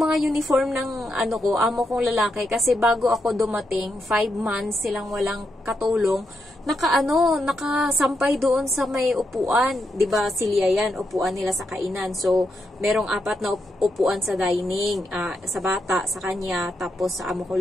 uniform ng amo kong lalaki, kasi bago ako dumating, 5 months silang walang katulong, nakasampay doon sa may upuan. 'Di ba silya yan, upuan nila sa kainan. So, merong 4 na upuan sa dining, sa bata, sa kanya, tapos sa amo ko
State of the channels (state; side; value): normal; both; correlation 0.83